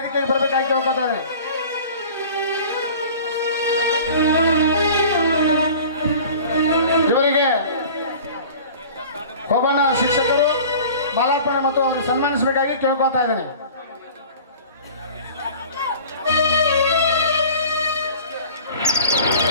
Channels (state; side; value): inverted; both; correlation -0.42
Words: ಬರಬೇಕಾಗಿ ಕೇಳ್ಕೊತಾ ಇದ್ದೇನೆ. ಇವರಿಗೆ ಹೋಗೋಣ ಶಿಕ್ಷಕರು ಮಾಲಾರ್ಪಣೆ ಮತ್ತು ಅವರಿಗೆ ಸನ್ಮಾನಿಸಬೇಕಾಗಿ ಕೇಳ್ಕೊತಾ ಇದ್ದೇನೆ.